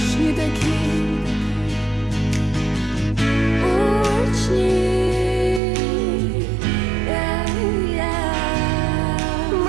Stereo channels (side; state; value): left; drops out; at 5.6 s